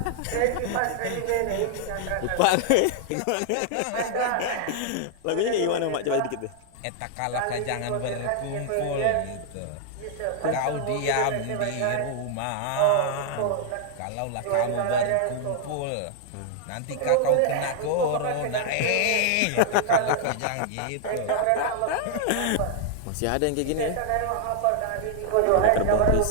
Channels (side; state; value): both; different; correlation 0.00